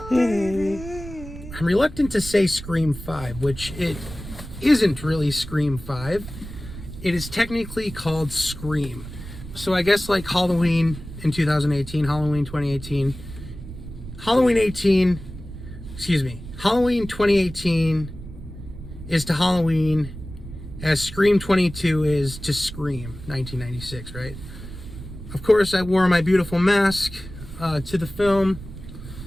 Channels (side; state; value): right; noise; rumble, 12 dB below the sound